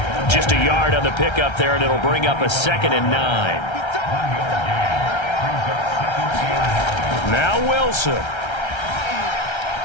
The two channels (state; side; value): late; right; 1.3 ms